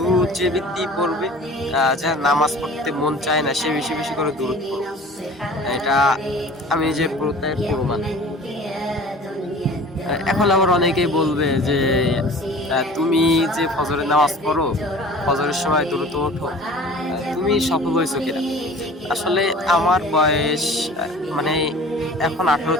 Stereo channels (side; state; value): both; normal; correlation 0.43